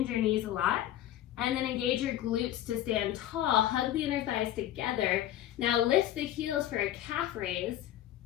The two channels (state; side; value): quieter; right; 12.7 dB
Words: your knees a lot, and then engage your glutes to stand tall, hug the inner thighs together. Now lift the heels for a calf raise.